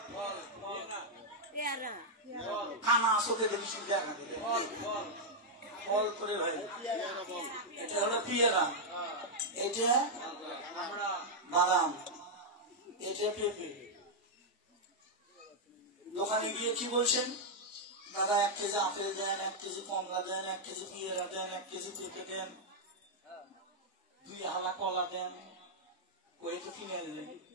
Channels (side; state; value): both; normal; correlation -0.03